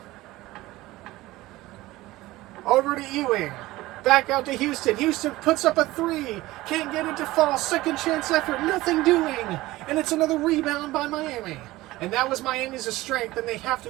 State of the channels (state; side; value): quieter; left; 18.2 dB